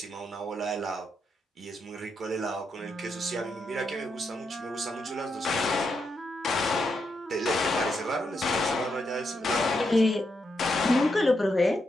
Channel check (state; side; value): normal; both; correlation 0.82